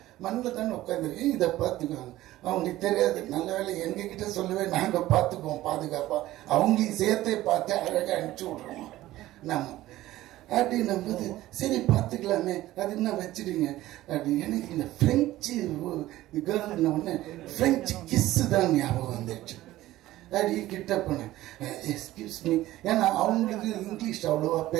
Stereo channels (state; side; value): quieter; left; 15.8 dB